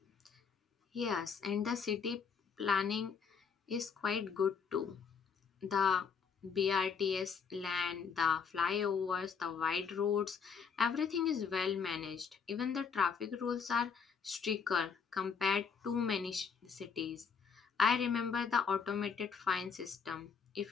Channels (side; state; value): right; quieter; 6.2 dB